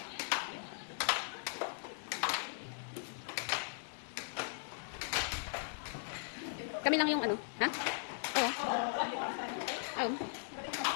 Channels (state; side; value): silent; right; digital silence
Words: Kami lang yung ano, ha? Oo. Oo.